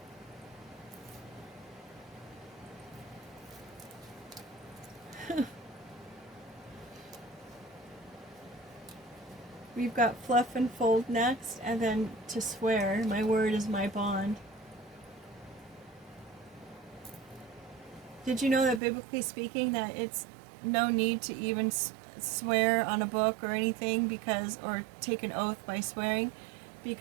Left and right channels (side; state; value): left; drops out; at 18.8 s